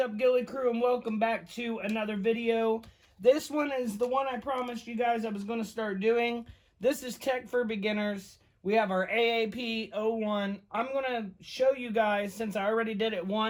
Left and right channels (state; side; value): identical; both; correlation 1.00